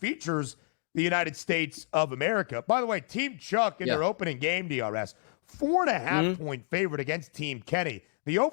the United States of America. By the way, Team Chuck in their opening game, DRS, 4.5 point favorite against Team Kenny. The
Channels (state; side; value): silent; right; 58 dB below the other